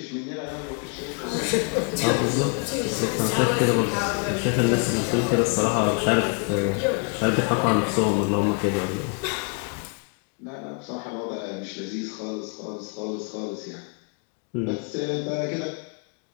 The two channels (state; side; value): quieter; right; 37.6 dB